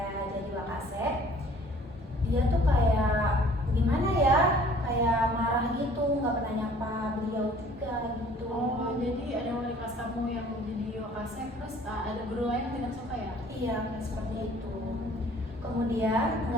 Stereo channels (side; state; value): both; normal; correlation 0.53